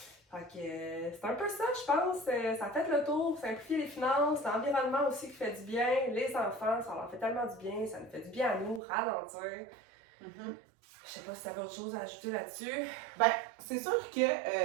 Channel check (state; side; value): drops out; left; at 8.8 s